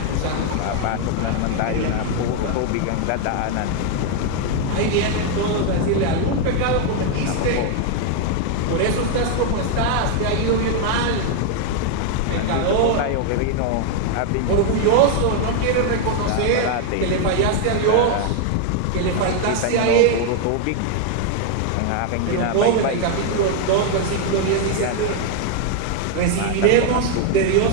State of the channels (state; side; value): different; both; correlation 0.00